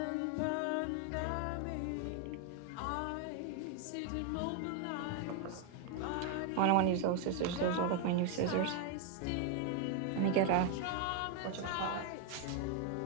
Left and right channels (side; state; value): both; different; correlation 0.01